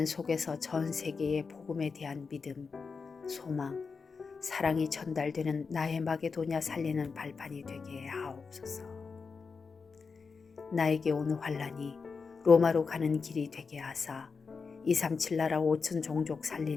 속에서 전 세계의 복음에 대한 믿음, 소망, 사랑이 전달되는 나의 마게도냐 살리는 발판이 되게 하옵소서. 나에게 온 환란이 로마로 가는 길이 되게 하사 237 나라 5천 종족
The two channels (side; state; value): right; quieter; 5.0 dB